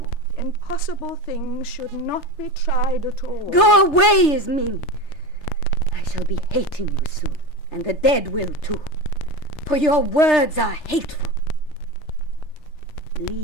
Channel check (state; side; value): late; right; 3.3 ms